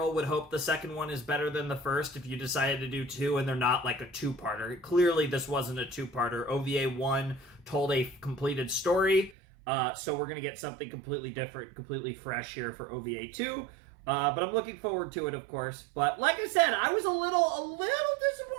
would hope the second one is better than the first if you decided to do 2 and they're not like a 2-parter. Clearly this wasn't a 2-parter. OVA 1 told a completed story, so we're going to get something completely different, completely fresh here for OVA 2. But I'm looking forward to it, of course. But like I said, I was a little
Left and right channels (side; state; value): left; drops out; at 9.3 s